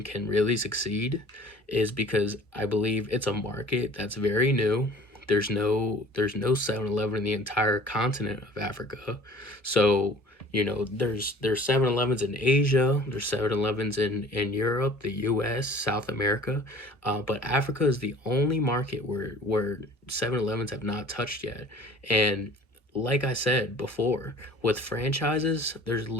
can really succeed is because I believe it's a market that's very new. There's no 7-Eleven in the entire continent of Africa. So, there's 7-Elevens in Asia, there's 7-Elevens in Europe, the US, South America. But Africa is the only market where 7-Elevens have not touched yet. And like I said before, with franchises, there's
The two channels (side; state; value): both; normal; correlation 0.47